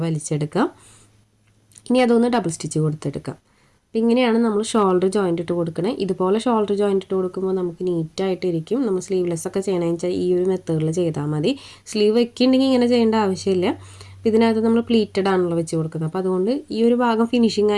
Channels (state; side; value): identical; both; correlation 1.00